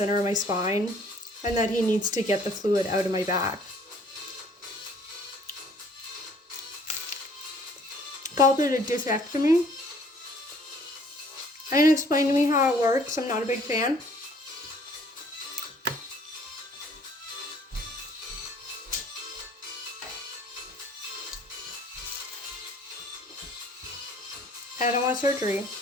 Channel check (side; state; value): both; normal; correlation 0.57